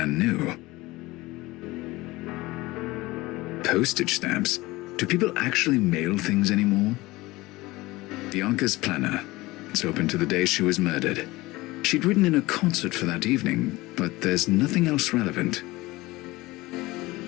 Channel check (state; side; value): quieter; right; 20.2 dB